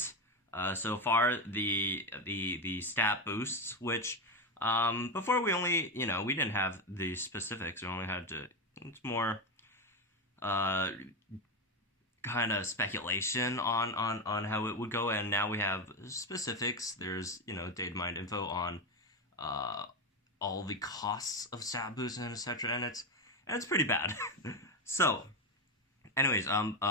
so far, the stat boosts, which before we only, we didn't have the specifics. We only had to, it's more kind of speculation on how it would go, and now we have specifics. There's data mined info on all the costs of stat boosts and etc. and it's pretty bad. So anyways,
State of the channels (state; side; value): normal; both; correlation 0.13